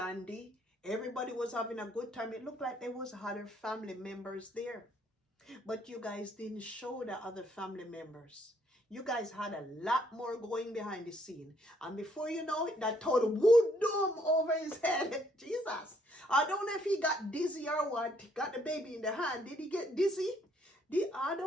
Everybody was having a good time. It looked like there was other family members there. But you guys didn't show the other family members. You guys had a lot more going behind the scene. And before you know it, that total wood dome over his head. Jesus. I don't know if he got dizzy or what. He got the baby in the hand. Did he get dizzy? I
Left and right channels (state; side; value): normal; both; correlation 0.68